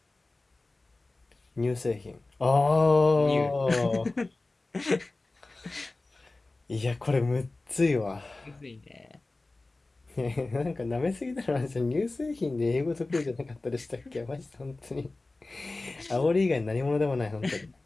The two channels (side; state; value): right; quieter; 3.2 dB